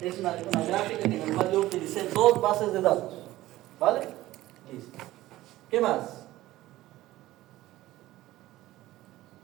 una gráfica en la cual yo utilicé 2 bases de datos. ¿Vale? Listo. ¿Qué más?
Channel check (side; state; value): left; quieter; 16.2 dB